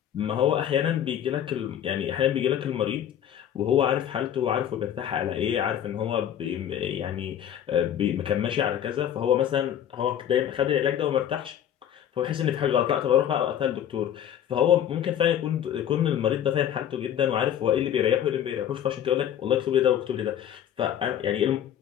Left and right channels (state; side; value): quieter; right; 10.1 dB